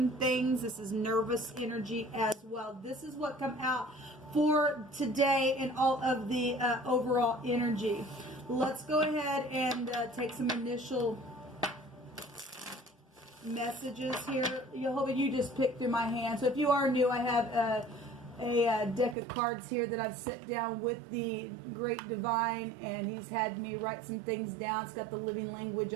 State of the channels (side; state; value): left; drops out; at 19.2 s